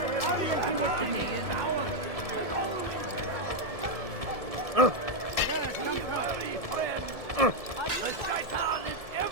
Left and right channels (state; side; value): late; left; 1.7 ms